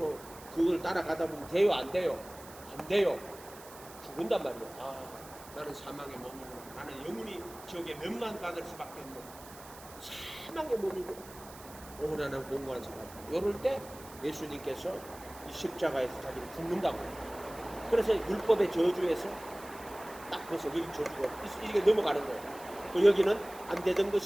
그걸 따라가다 보면 돼요? 안 돼요? 안 돼요. 죽은단 말이에요. 아, 나는 사망의 몸이구나. 나는 영원히 지옥에 멸망받을 수밖에 없는 사망의 몸이구나. 오라는 공고한 사람. 이럴 때 예수님께서 이 십자가에서 자기를 죽는다고. 그래서 율법의 저주에서 딱 벌써 여기 저주가 이게 넘어가는 거예요. 그 여기는 안 되던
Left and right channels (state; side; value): noise; right; hiss, 18 dB below the sound